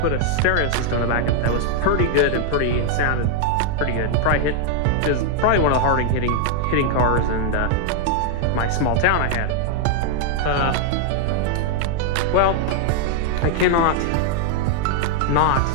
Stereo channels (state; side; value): different; both; correlation 0.00